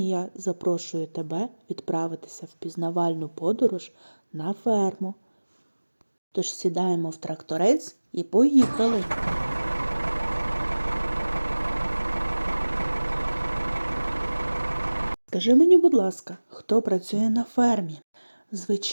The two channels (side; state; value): both; inverted; correlation -1.00